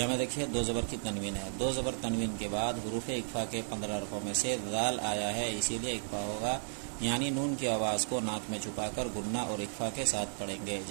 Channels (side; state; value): left; silent; digital silence